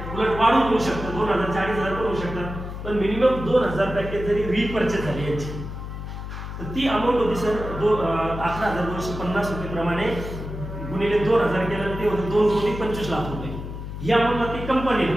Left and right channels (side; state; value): left; noise; hum, 8 dB below the sound